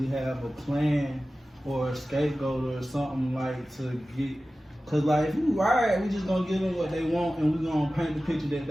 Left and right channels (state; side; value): normal; both; correlation 0.95